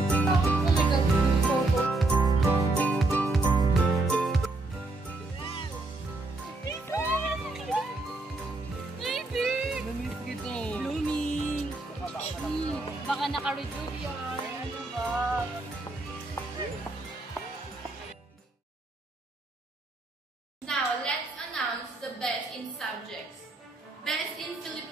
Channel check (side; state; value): left; quieter; 3.0 dB